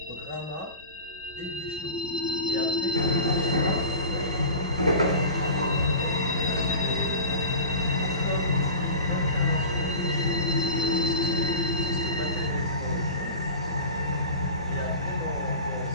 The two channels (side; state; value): both; inverted; correlation -0.35